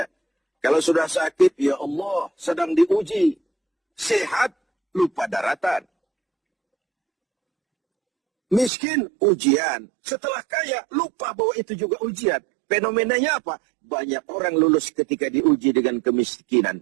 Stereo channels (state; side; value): drops out; left; at 8.7 s